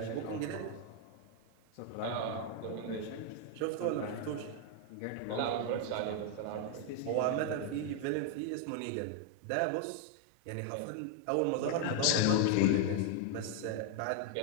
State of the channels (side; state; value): both; different; correlation 0.00